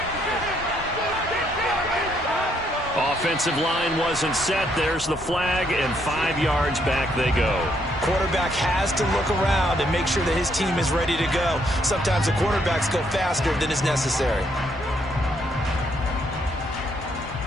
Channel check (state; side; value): normal; both; correlation 0.72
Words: Offensive line wasn't set. There's the flag, and 5 yards back they go. Quarterback has to look around and make sure that his team is ready to go. Sometimes the quarterbacks go faster than is necessary.